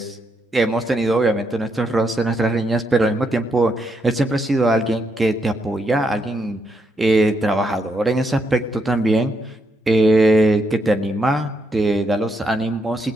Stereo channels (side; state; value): both; normal; correlation 0.79